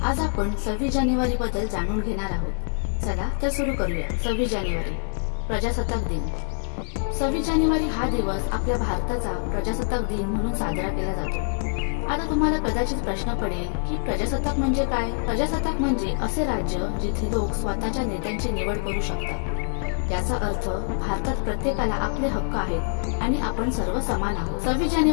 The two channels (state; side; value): silent; right; 62 dB below the other